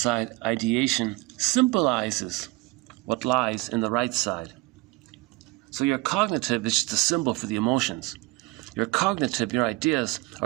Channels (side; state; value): left; quieter; 21.9 dB